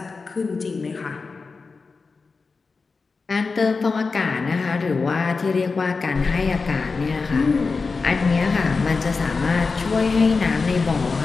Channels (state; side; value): quieter; right; 4.4 dB